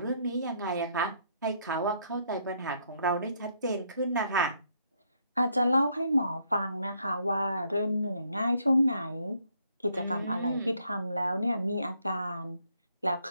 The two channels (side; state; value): both; inverted; correlation -0.71